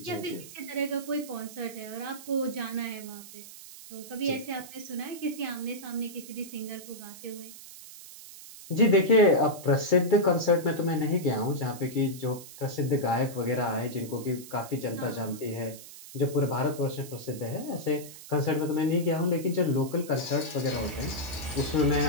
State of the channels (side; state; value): right; noise; hiss, 16 dB below the sound